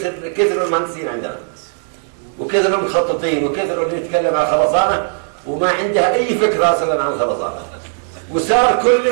كثروا المهندسين عندنا، وكثروا المخططين، وكثروا اللي يتكلم عن خرسانة وما عنده أي فكرة أصلا عن خرسانة. وصار كل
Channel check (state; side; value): silent; left; digital silence